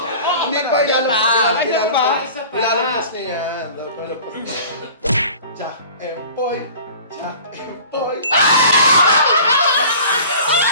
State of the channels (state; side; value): inverted; both; correlation -0.43